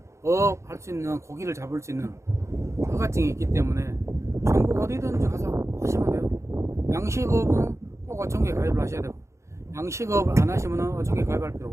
할 수 있는 고기를 잡을 수 있는 허가증이 있기 때문에 전국 어디든지 가서 하시면 돼요. 양식업은 꼭 꼭 어촌계 가입을 하셔야 되고, 양식업을 안 하시면 어촌계 가입할 필요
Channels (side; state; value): left; late; 0.14 ms